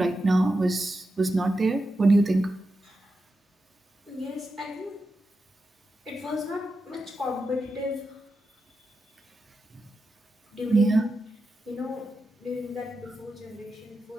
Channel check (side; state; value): both; normal; correlation 0.89